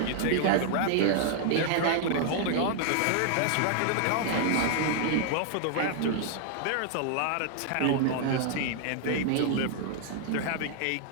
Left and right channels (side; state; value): both; different; correlation 0.00